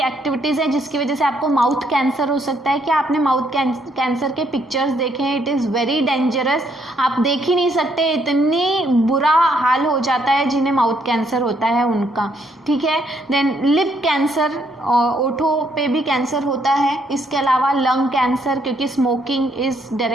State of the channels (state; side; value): normal; both; correlation 0.71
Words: हैं जिसकी वजह से आपको माउथ कैंसर हो सकता है। क्या आपने माउथ कैंसर के पिक्चर्स देखे हैं? इट इज़ वेरी डेंजरस, आप देख ही नहीं सकते, इतनी बुरा हाल हो जाता है जिन्हें माउथ कैंसर होता है उनका, ठीक है। देन लिप कैंसर, ओठों पे भी कैंसर होता है। इसके अलावा लंग कैंसर, क्योंकि smoking is